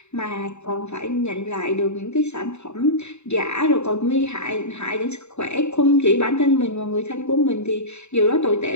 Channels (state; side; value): late; right; 0.82 ms